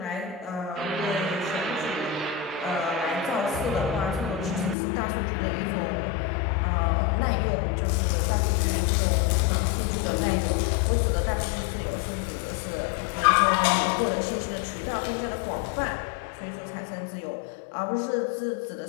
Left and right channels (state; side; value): drops out; right; at 4.8 s